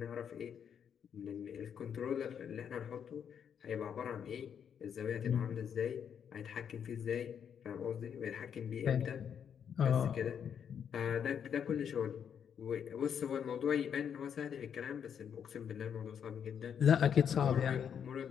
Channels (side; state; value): right; quieter; 8.0 dB